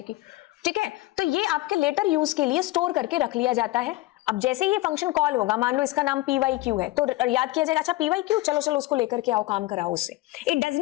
ठीक है, तो ये आपके लेटर यूज के लिए स्टोर करके रख लिया जाता है। अब जैसे ये फंक्शन कॉल होगा, मान लो इसका नाम pyq है, तो याद किया जाएगा अच्छा pyq, चलो उसको लेकर के आओ, काम कराओ उससे। It does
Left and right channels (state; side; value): quieter; right; 19.0 dB